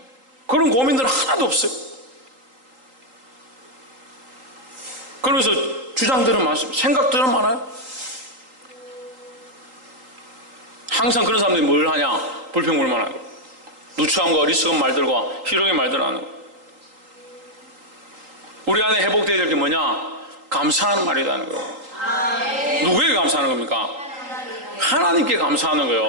그런 고민들은 하나도 없어요. 그러면서 주장들은 많습니다. 생각들은 많아요. 항상 그런 사람들이 뭘 하냐? 불평불만하는 거예요. 누추함과 어리석은 말들과 희롱의 말들을 하는 거예요. 우리 안에 회복되어야 될 게 뭐냐? 감사하는 말이라는 거예요. 누구에게 감사하는 겁니까? 하나님께 감사하는 거예요.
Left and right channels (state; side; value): late; left; 3.8 ms